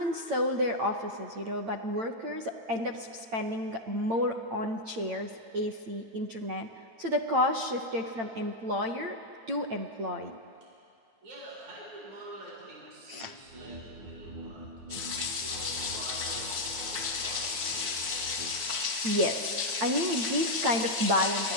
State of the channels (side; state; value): left; late; 8.7 ms